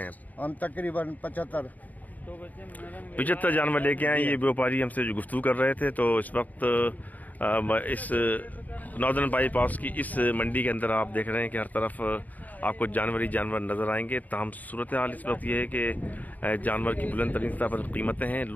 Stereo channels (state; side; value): late; right; 0.079 ms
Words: हम तकरीबन 75 जानवर लेके आए। ये व्यापारी हमसे जो गुफ्तगू कर रहे थे। तो इस वक्त इस नॉर्दर्न बाईपास की इस मंडी के अंदर आप देख रहे हैं कि हर तरफ आपको जानवर ही जानवर नज़र आएंगे। ताहम सूरत हाल इस वक्त ये है कि जानवर की बुलंद तरीन स्तर पर कीमतें हैं,